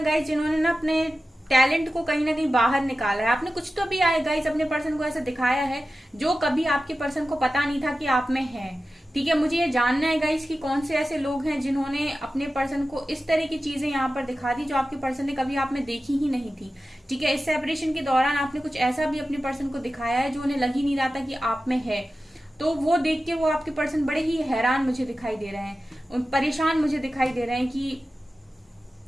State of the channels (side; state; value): both; normal; correlation 0.94